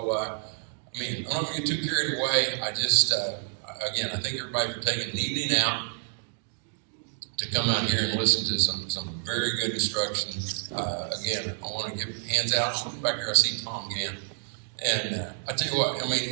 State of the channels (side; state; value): left; silent; 58 dB below the other